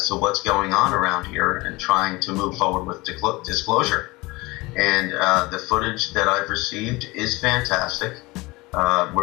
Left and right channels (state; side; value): quieter; right; 22.6 dB